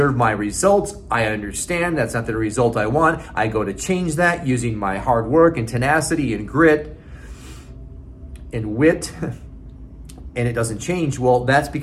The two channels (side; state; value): both; identical; correlation 1.00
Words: my results. I understand that's not the result I want. I go to change that using my hard work and tenacity and grit and wit, and it doesn't change. Well, that's